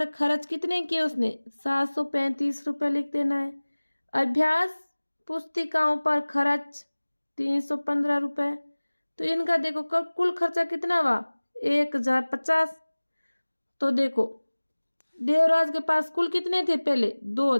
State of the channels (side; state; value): both; inverted; correlation -1.00